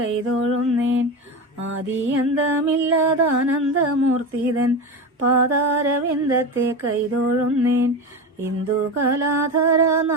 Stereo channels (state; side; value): normal; both; correlation 0.22